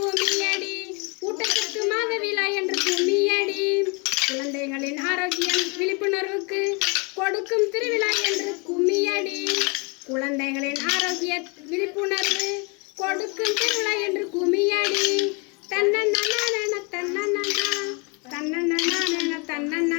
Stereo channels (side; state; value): right; quieter; 32.0 dB